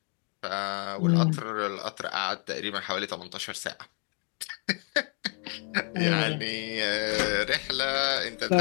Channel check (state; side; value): quieter; right; 39.9 dB